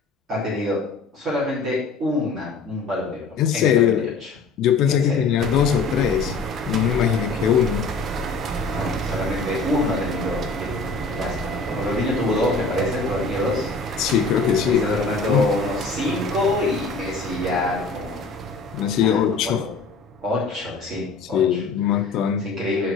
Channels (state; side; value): quieter; right; 4.1 dB